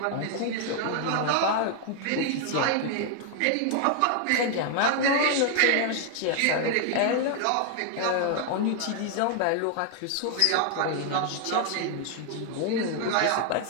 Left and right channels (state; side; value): different; both; correlation 0.00